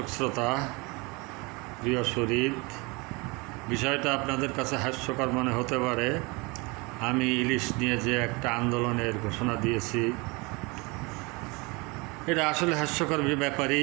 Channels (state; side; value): quieter; left; 26.8 dB